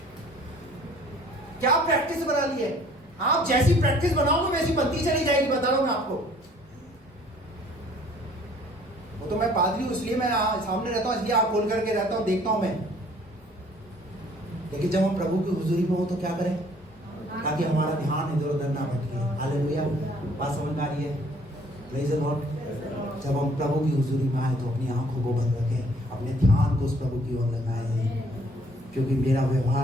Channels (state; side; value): normal; both; correlation 0.57